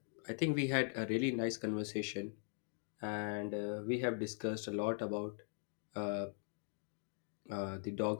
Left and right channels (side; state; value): right; silent; 50 dB below the other